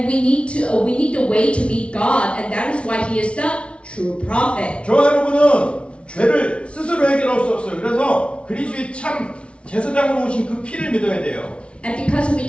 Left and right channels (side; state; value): right; late; 0.060 ms